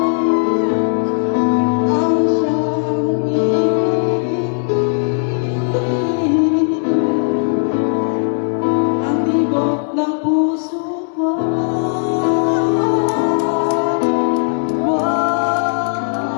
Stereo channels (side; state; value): right; silent; 68 dB below the other